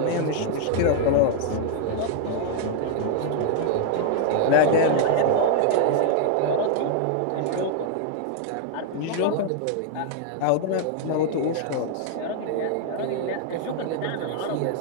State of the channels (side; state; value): both; different; correlation 0.00